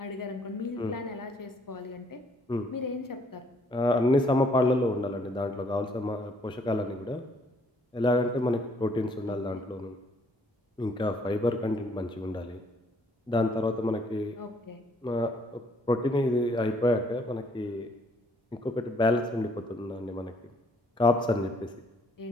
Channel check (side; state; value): both; normal; correlation 0.65